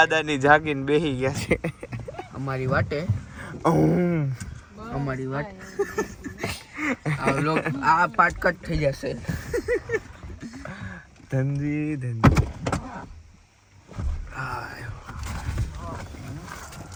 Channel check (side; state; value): both; identical; correlation 1.00